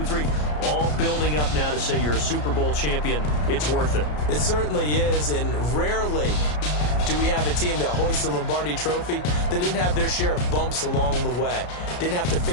3, all building up now to say you're a Super Bowl champion. It's worth it. It certainly is, and rarely do we have a team that hoists the Lombardi Trophy that didn't have their share of bumps along the way, didn't have to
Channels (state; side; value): late; right; 33 ms